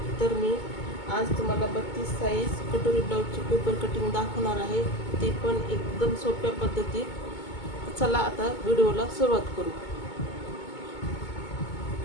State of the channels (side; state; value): right; late; 2.2 ms